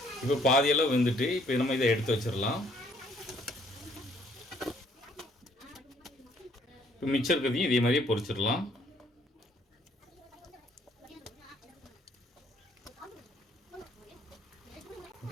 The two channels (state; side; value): normal; both; correlation 0.64